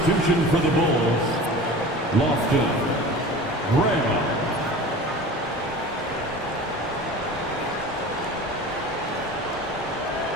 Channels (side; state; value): both; normal; correlation 0.37